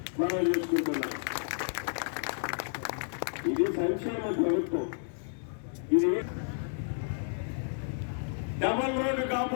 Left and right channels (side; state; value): right; silent; digital silence